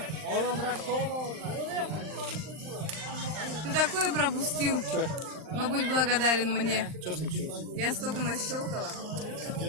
Ты такое пропустил. Но будь благодарен мне. Что случилось? Я столько нащелкала.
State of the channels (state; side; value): late; left; 39 ms